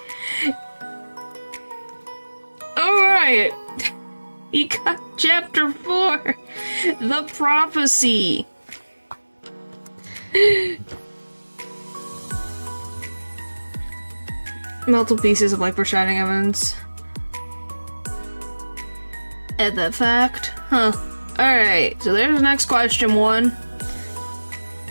Alright. You got chapter 4. The Prophecy. Multiple pieces of life-foreshadowing evidence. Add that fact. Huh. Alright, so there's the next question 1.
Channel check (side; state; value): both; inverted; correlation -1.00